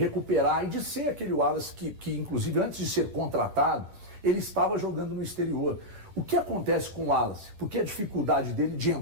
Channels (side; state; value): left; late; 10 ms